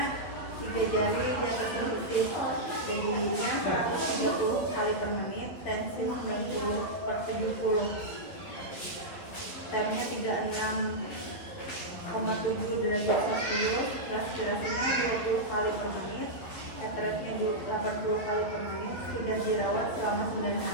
3 jari di atas sensitif, dengginya 130 kali per menit, tensi 90/70, TM-nya 36,7 derajat Celcius, respirasinya 20 kali per menit, heart rate-nya 80 kali per menit, sudah dirawat selama 9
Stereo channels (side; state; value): right; late; 12 ms